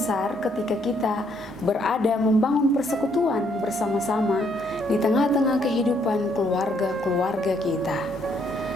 ketika kita berada membangun persekutuan bersama-sama di tengah-tengah kehidupan keluarga-keluarga kita.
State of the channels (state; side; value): normal; both; correlation 0.70